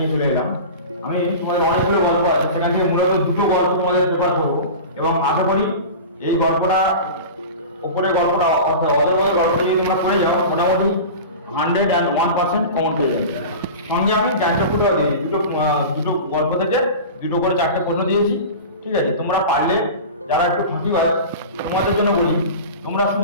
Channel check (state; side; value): inverted; both; correlation -0.32